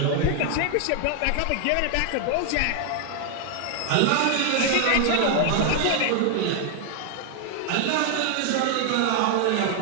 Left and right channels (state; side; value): different; both; correlation 0.00